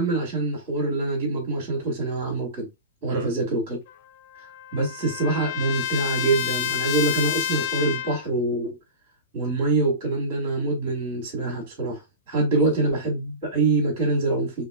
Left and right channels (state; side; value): inverted; both; correlation -0.32